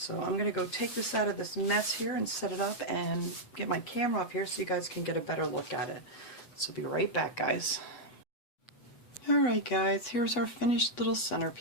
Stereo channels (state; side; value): late; right; 8.1 ms